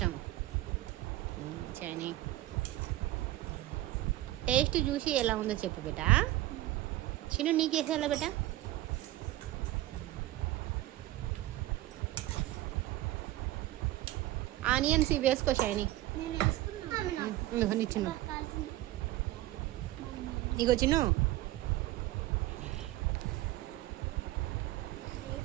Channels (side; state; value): left; quieter; 16.3 dB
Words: షైనీ టేస్ట్ చూసి ఎలా ఉందో చెప్పు బేట. చిన్ను నీకు వేసేయాలా బేట? ఆనియన్స్ ఇవి వేసుకో షైనీ. నీ చిన్ను ఇగో చిన్ను